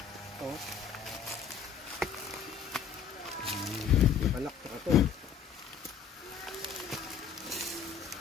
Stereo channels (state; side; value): quieter; right; 7.2 dB